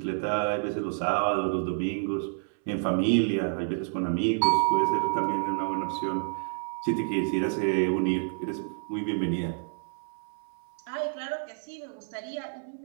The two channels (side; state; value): left; silent; 59 dB below the other